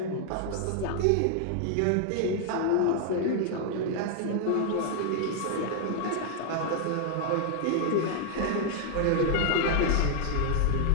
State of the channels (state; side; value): different; both; correlation 0.00